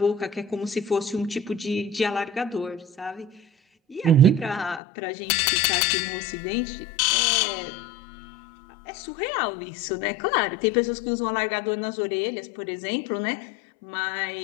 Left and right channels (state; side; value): drops out; right; at 4.8 s